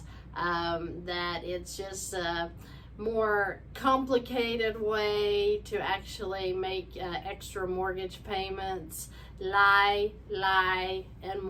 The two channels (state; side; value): identical; both; correlation 1.00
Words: that it's just a more complicated way to actually make extra mortgage payments. Lie, and